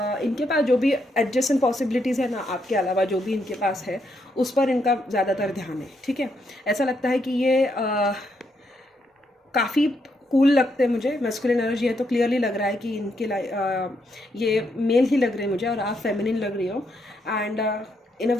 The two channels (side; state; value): both; normal; correlation 0.78